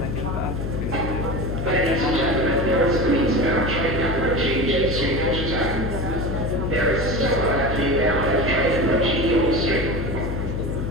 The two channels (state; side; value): noise; left; hum, 3 dB below the sound